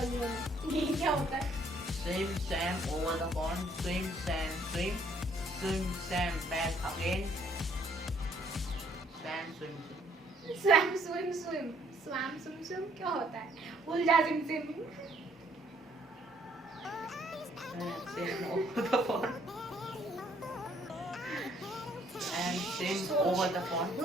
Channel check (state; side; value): normal; both; correlation 0.65